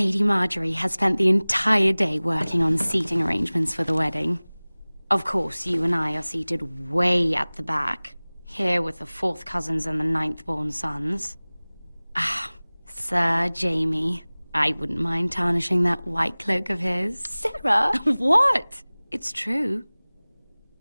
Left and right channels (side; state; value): both; inverted; correlation -1.00